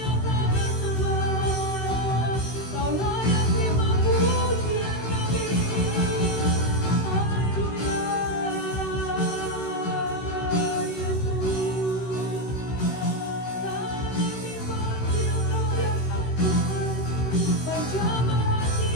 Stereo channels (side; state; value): right; late; 16 ms